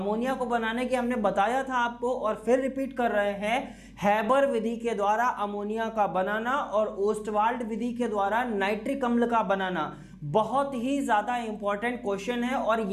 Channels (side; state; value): both; identical; correlation 1.00